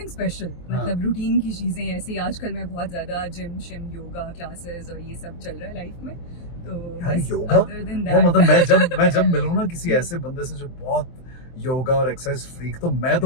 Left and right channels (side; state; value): right; late; 23 ms